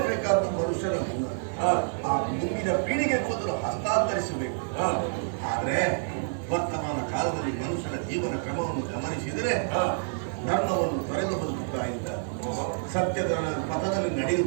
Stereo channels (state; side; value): silent; left; digital silence